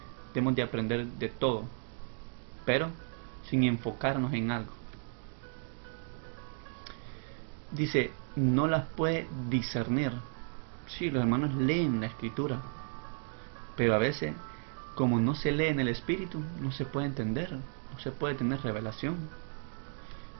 debemos de aprender de todo, pero sin enfocarnos en algo. Dice, no las puede discernir. Sí, los hermanos leen la escritura, pero a veces, como no se lee en el espíritu, no se puede entender, no se puede tener revelación.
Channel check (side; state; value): left; silent; 55 dB below the other